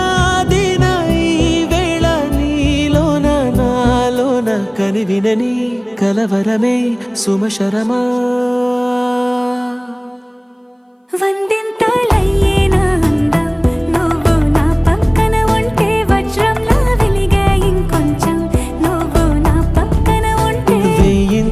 ఈ వేళ నీలోన నాలోన కనివినని కలవరమే సుమశరమా వందింతలయ్యే నా అందం నువ్వు నా పక్కన ఉంటే వజ్రంలా వెలిగే ఇంకొంచెం నువ్వు నా పక్కన ఉంటే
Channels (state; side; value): identical; both; correlation 1.00